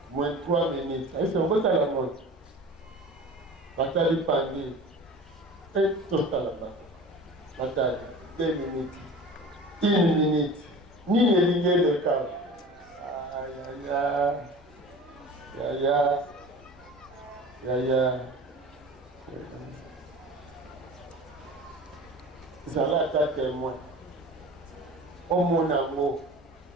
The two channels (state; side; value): normal; both; correlation 0.38